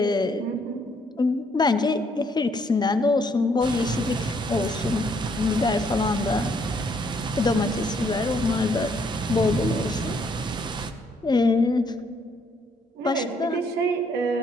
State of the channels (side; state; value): both; normal; correlation 0.69